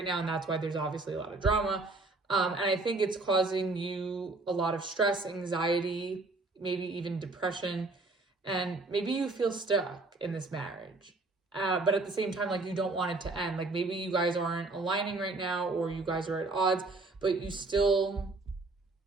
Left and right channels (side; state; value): left; quieter; 3.3 dB